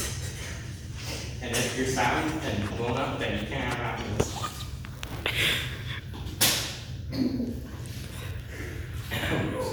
And if you're sad and blown up, then you can't have happiness.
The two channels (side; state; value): both; identical; correlation 1.00